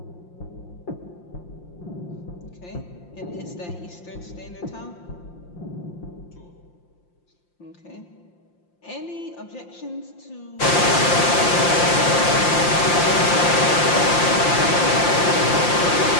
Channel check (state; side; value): late; right; 5.7 ms